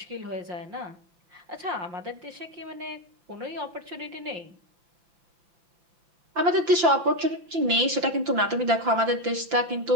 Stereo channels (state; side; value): late; left; 5.8 ms